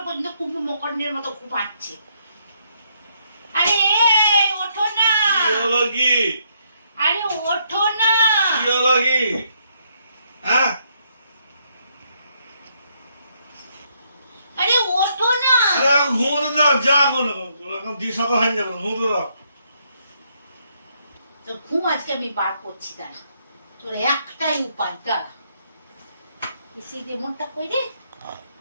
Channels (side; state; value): both; inverted; correlation -0.73